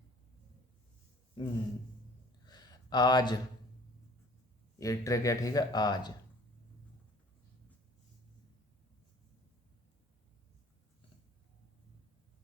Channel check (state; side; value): normal; both; correlation 0.52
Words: आज ये ट्रिक है। ठीक है, आज